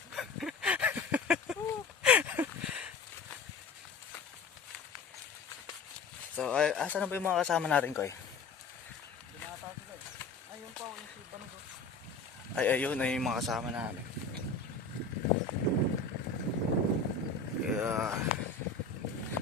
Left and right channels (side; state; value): right; quieter; 4.3 dB